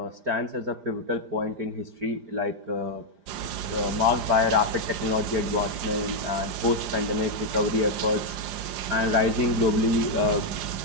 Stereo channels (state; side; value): late; left; 5.0 ms